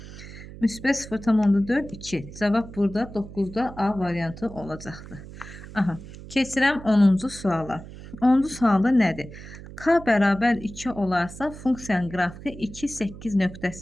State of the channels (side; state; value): right; noise; hum, 15 dB below the sound